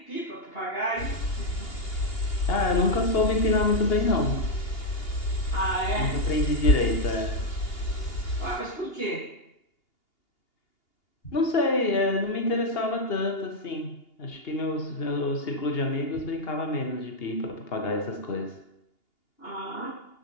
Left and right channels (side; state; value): right; late; 2.8 ms